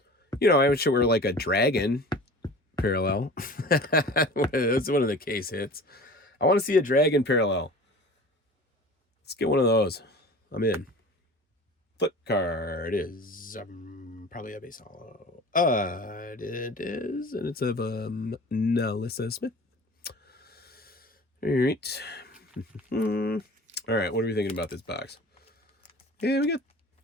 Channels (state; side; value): normal; both; correlation 0.40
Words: You know, I wish it were like a dragon parallel. That's one of the case hits. I want to see a dragon parallel. Let's get one of those. I'm in. Flip card is probably a base hollow. It is, and it's of Nalissa Smith. All right. All right, what are we thinking about this box? Yeah, we got